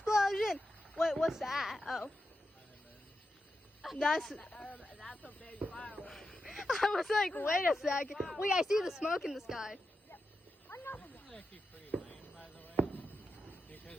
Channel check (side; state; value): both; normal; correlation 0.88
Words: Wait, what's that? Oh. That's... That's a big firework. I was like, wait a second. Wait, I see the smoke in the sky. Another This one. is actually pretty lame, by the way.